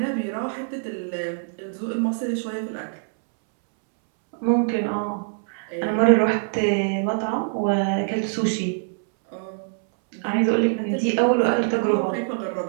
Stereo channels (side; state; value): left; silent; 63 dB below the other